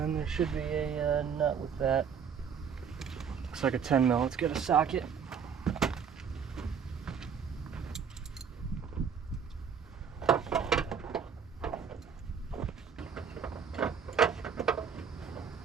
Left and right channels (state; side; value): quieter; left; 6.9 dB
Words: there should be a nut with that. Looks like a 10 mil. Let's get a socket.